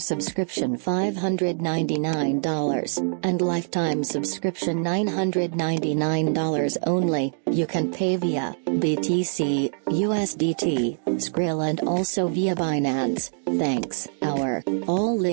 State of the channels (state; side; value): silent; left; digital silence